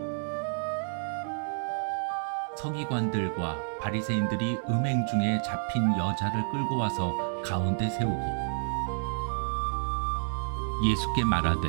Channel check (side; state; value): left; silent; 58 dB below the other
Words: 서기관들과 바리새인들이 음행 중에 잡힌 여자를 끌고 와서 가운데 세우고 예수께 말하되